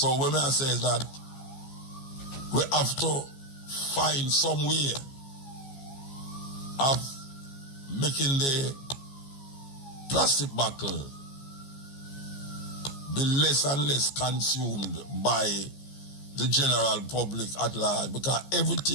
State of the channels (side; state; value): right; late; 15 ms